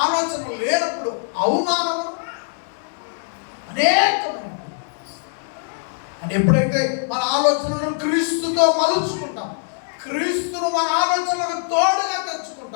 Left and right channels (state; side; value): silent; right; 64 dB below the other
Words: ఆలోచనలు లేనప్పుడు అవమానము అనేకమైన. అని ఎప్పుడైతే మన ఆలోచనలను క్రీస్తుతో మలుచుకుంటాం, క్రీస్తును మన ఆలోచనలకు తోడుగా